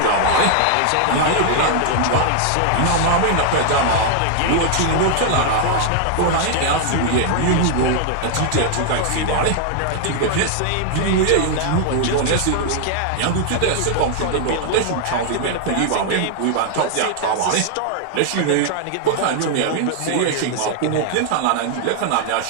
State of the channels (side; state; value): both; different; correlation 0.00